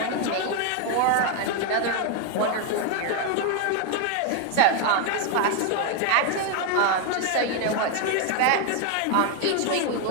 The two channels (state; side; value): different; both; correlation 0.01